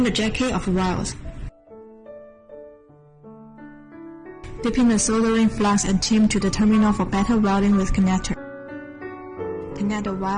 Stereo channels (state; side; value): identical; both; correlation 1.00